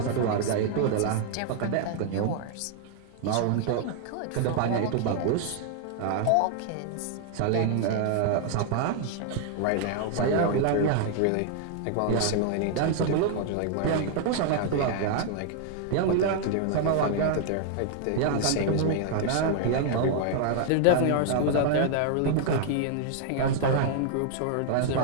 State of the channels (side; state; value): both; different; correlation -0.01